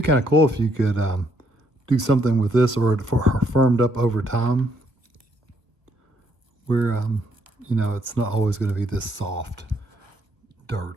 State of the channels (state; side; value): late; left; 1.1 ms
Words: be kind of cool if you could do something with this or for firmed up over time where, you know, it's not always going to be this soft